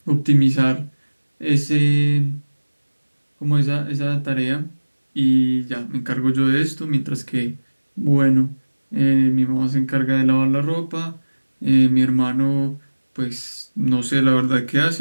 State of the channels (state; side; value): inverted; both; correlation -1.00